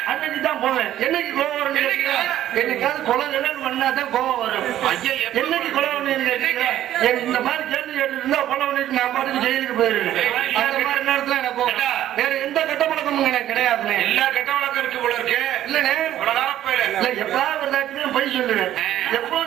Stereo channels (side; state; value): left; quieter; 12.4 dB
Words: அன்னைக்கு தான் போவேன். என்னைக்கு கோவம் வரும்? என்னைக்காவது கொலை பண்ணாதான் கோவம் வரும். என்னைக்கு கொலை பண்ணி இந்த மாதிரி கேள்வி கேட்டு இருந்தா கொலை பண்ணிட்டு நான் பாட்டுக்கு ஜெயிலுக்கு போயிருவேன். அந்த மாதிரி நேரத்துல எனக்கு வேற எந்த கெட்ட பழக்கமும் எனக்கு கிடையாது. எல்லா கெட்ட பழக்கம் இருக்கு போல இருக்கு. இல்லண்ணே, எப்ப போய் சொல்லுவேன்.